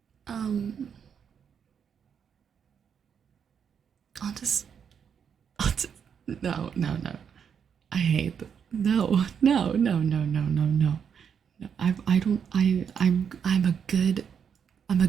I'll just no. I hate that. No. I'm a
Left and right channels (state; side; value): quieter; left; 7.4 dB